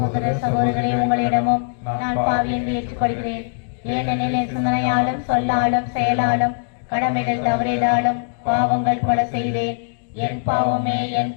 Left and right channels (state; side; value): silent; right; digital silence